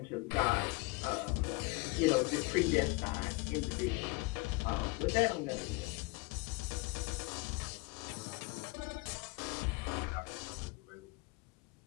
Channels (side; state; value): right; quieter; 24.8 dB